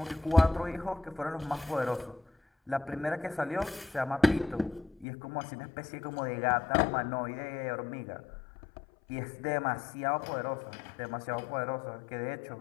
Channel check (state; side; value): drops out; right; at 5.1 s